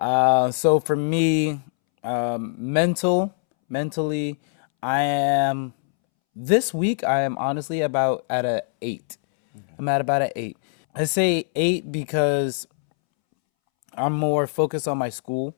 for me, mentally, this week I am honestly about at a 8. Okay. I'm at about an 8. I say 8 because I'm more focused on my school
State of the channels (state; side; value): silent; right; 64 dB below the other